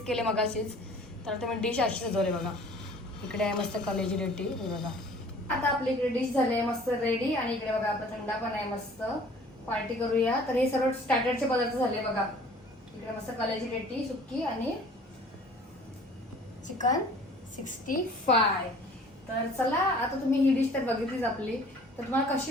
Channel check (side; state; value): both; normal; correlation 0.50